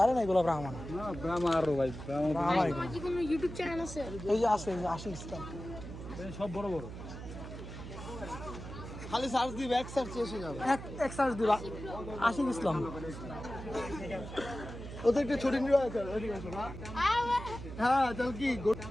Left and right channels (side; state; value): right; noise; hum, 10 dB below the sound